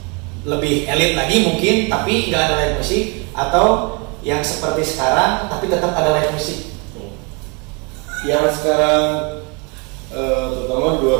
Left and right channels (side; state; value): left; quieter; 31.4 dB